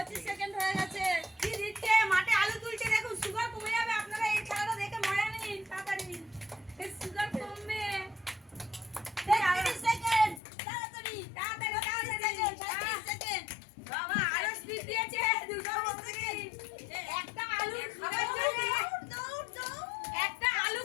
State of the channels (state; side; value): drops out; right; at 10.4 s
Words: সেকেন্ড হয়ে গেছে। কি দিচ্ছে মাঠে আলু তুলছে, দেখুন সুগার কমে যাবে। আপনারা এই খেলাটা দেখে মজা নিন তাড়াতাড়ি, সুগার কমবে। 30 সেকেন্ড, তাড়াতাড়ি তাড়াতাড়ি তাড়াতাড়ি 30 সেকেন্ড। বাবা আরো স্পিড দিয়েছে, দুটো সেকেন্ড। একটা আলু খাবার জন্য একটা আলু